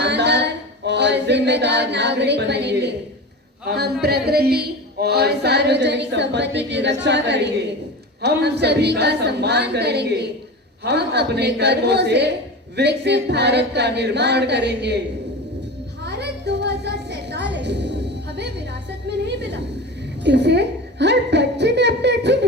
और जिम्मेदार नागरिक बनेंगे। हम प्रकृति और सार्वजनिक संपत्ति की रक्षा करेंगे। हम सभी का सम्मान करेंगे। हम अपने कर्मों से विकसित भारत का निर्माण करेंगे। भारत 2047 हमें विरासत में नहीं मिला, इसे हर बच्चे ने अपने अच्छे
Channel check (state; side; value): normal; both; correlation 0.29